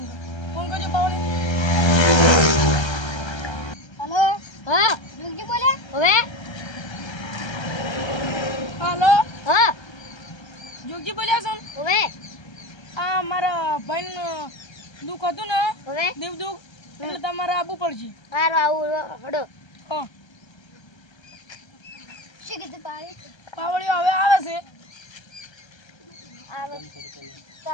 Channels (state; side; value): late; right; 1.3 ms